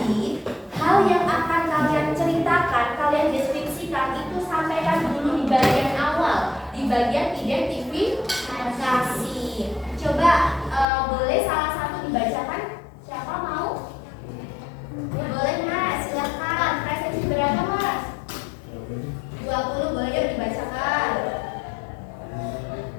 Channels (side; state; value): right; drops out; at 10.9 s